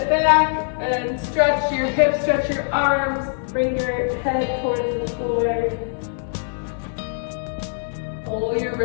back and stretch your hips, stretch your arms, bring your head towards the floor. Pull your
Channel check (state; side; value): silent; right; 64 dB below the other